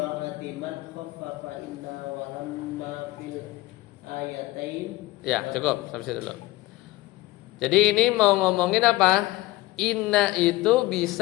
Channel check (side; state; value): right; quieter; 18.8 dB